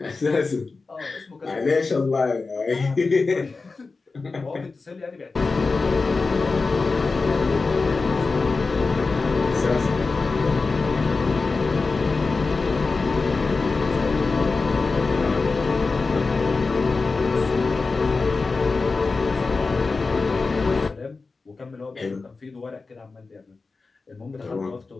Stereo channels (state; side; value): quieter; right; 4.0 dB